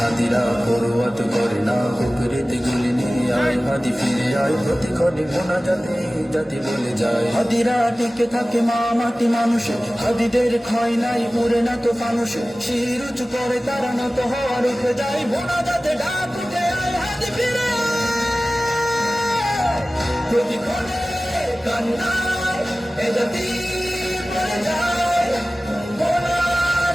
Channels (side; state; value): both; normal; correlation 0.97